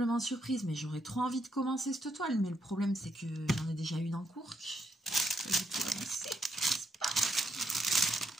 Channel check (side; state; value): both; normal; correlation 0.78